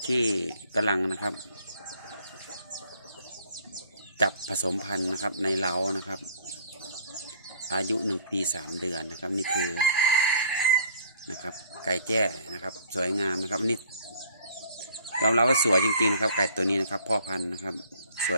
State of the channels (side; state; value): both; inverted; correlation -0.56